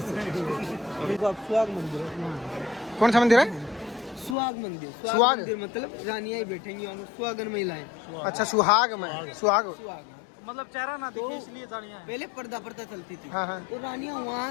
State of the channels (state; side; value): drops out; right; at 4.4 s